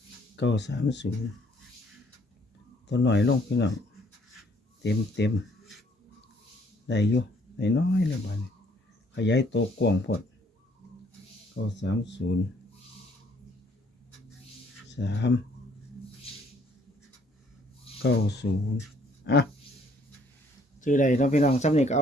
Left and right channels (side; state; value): both; normal; correlation 0.63